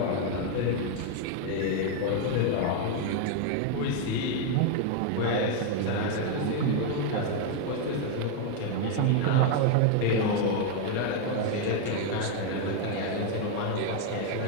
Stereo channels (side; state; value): both; different; correlation 0.01